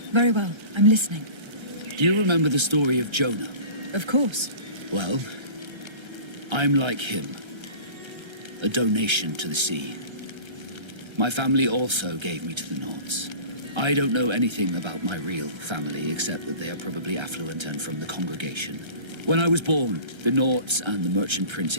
Very well. I'm listening. Do you remember the story of Jonah? Of course. Well, I'm like him. A donation to the sea. My family also gave me to the Nauts. I don't know anything about my real family, except that they are probably affluent and from the congregation. When I was born, the Nauts and the merchant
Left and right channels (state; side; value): late; left; 1.3 ms